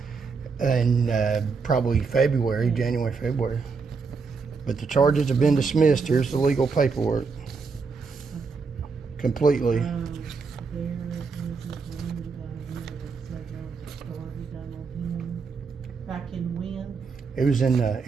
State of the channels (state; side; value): quieter; left; 4.9 dB